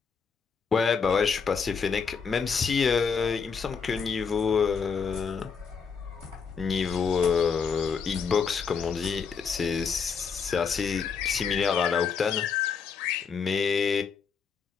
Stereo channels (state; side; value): quieter; right; 5.9 dB